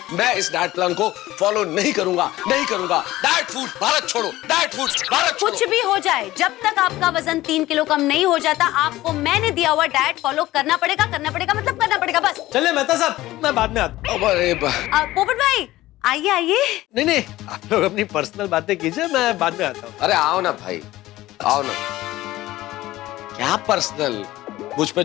मैं इस डाइट प्लान को फॉलो नहीं करूंगा, नहीं करूंगा। डाइट फूड भारत छोड़ो, डाइट फूड भारत छोड़ो। कुछ भी हो जाए, जब तक आपका वजन 3 किलो कम नहीं हो जाता, आपको मैंने दिया हुआ डाइट फॉलो करना पड़ेगा, मतलब करना पड़ेगा बस। चलिए मेहता साहब, मैं बाद में आता हूँ। अरे पोपट भाई, आइए आइए। नहीं, आप लोग अपनी पर्सनल बातें कीजिए, मैं बाद में आता हूँ। अरे आओ ना भाई, आओ ना। क्या पर्सनल? मुझ पे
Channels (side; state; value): right; quieter; 16.6 dB